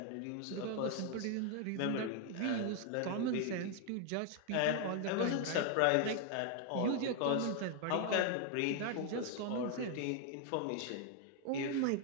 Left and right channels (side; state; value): both; different; correlation 0.00